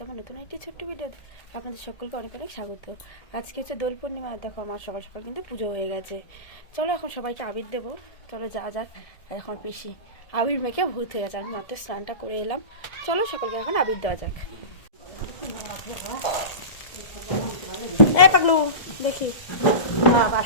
আমার নতুন একটি ছোট্ট ভিডিও আপনাদের সকলকে অনেক অনেক স্বাগত। আজকে হচ্ছে দোল পূর্ণিমা। দেখো আমার সকাল সকাল কিন্তু পুজো হয়ে গেছে। চলো এখন সবাইকে আবির দেবো, চলো যা যাক। আর এখন পিসি আবির মেখে ভূত হয়ে গেছে। আমি মাত্র স্নানটা করে এলাম। চলো সকলকে এখন আবির দেওয়া যাক। এই পাগলু দেখি বাবা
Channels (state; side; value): late; right; 2.0 ms